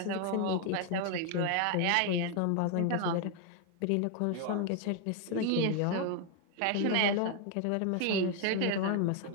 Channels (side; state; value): both; different; correlation 0.00